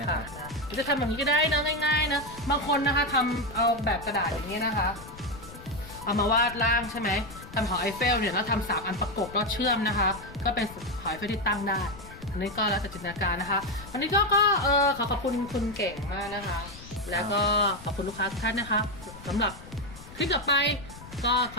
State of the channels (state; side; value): noise; left; rumble, 16 dB below the sound